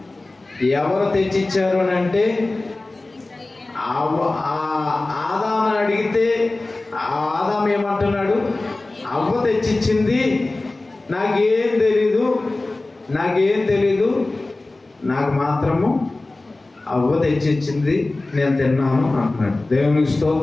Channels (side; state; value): right; quieter; 3.0 dB